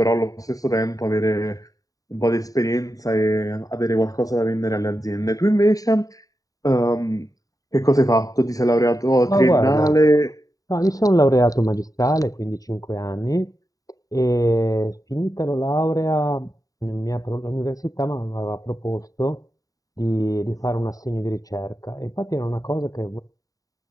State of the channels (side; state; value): right; late; 0.17 ms